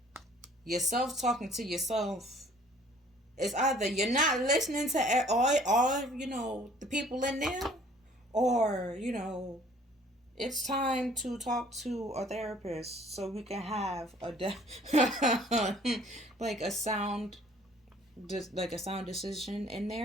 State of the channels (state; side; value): normal; both; correlation 0.55